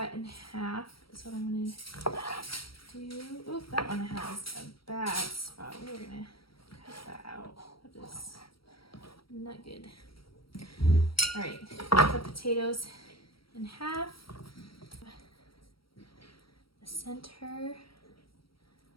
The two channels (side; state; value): right; late; 0.75 ms